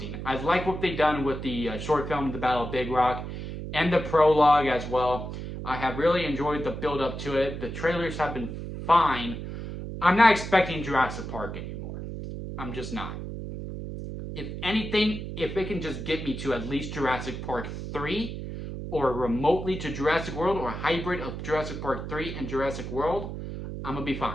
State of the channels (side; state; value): right; noise; hum, 7 dB below the sound